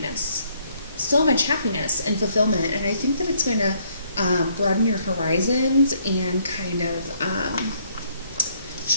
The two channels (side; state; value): both; inverted; correlation -0.68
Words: and fulfillment. And I think that it's going to broaden your horizons and kind of